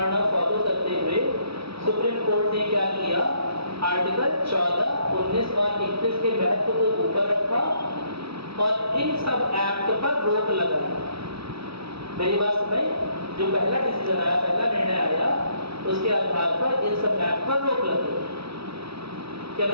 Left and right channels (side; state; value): left; late; 0.76 ms